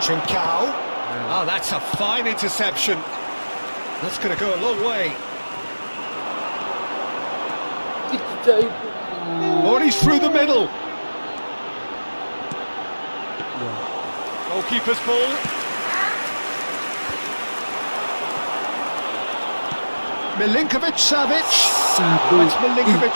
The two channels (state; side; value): inverted; both; correlation -1.00